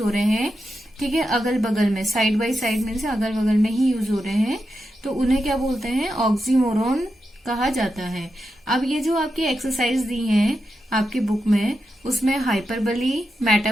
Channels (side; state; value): both; normal; correlation 0.88